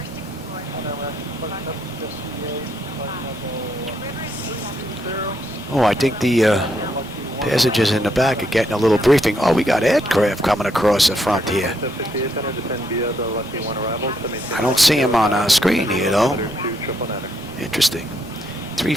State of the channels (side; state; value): both; normal; correlation 0.75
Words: Oh, I think the passengers in the back are getting a little briefing. Oh, we got aircraft coming across the front here. I don't see them on our screen here, though. Interesting.